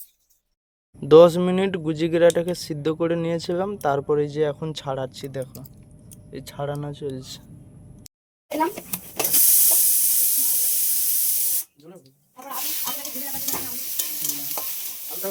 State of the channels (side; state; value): both; identical; correlation 1.00